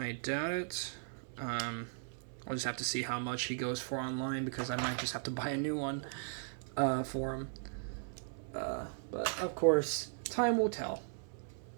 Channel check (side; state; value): left; silent; 53 dB below the other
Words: doubt it. I'll just have to see how much he goes for online, because I might just have to buy a new one for him. But, of course, time will tell.